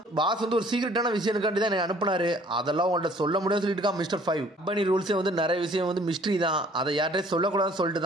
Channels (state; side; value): normal; both; correlation 0.56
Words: பாஸ் ஒரு சீக்கிரட்டான விஷயத்துக்காண்டி தான் அனுப்புனாரு, அதெல்லாம் உங்கள்ட்ட சொல்ல முடியாது சொல்லிட்டு இருக்கான் மிஸ்டர் 5. கம்பெனி ரூல்ஸே நிறைய விஷயம் மிஸ்ட்ரி தான், அதை யார்கிட்டயும் சொல்லக்கூடாதுன்னு சொல்லிட்டு